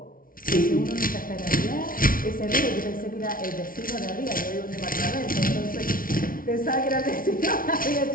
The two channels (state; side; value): late; right; 0.41 ms